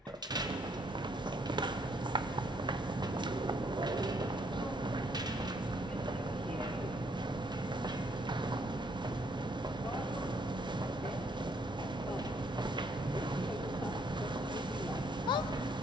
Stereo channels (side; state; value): both; normal; correlation 0.69